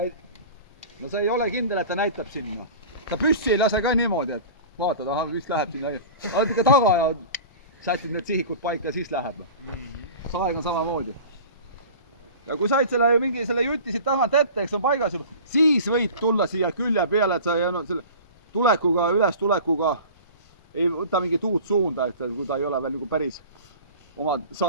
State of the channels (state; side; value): inverted; both; correlation -0.38